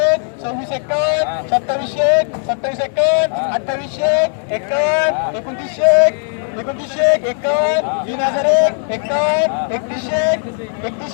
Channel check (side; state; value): right; silent; 57 dB below the other